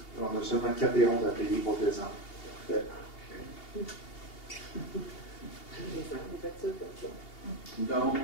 On a seulement 4 et 11 à payer pour décembre. Donc,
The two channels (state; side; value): late; right; 2.8 ms